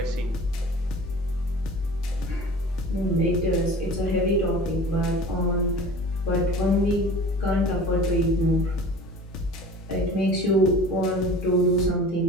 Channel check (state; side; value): normal; both; correlation 0.41